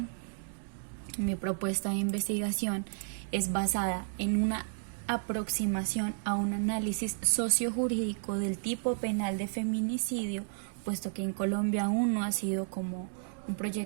mi propuesta de investigación es basada en una aproximación a un análisis sociojurídico del tipo penal de feminicidio, puesto que en Colombia aún no ha sido como un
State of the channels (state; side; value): silent; left; digital silence